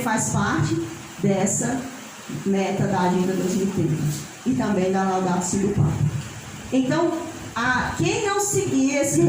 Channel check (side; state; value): both; identical; correlation 1.00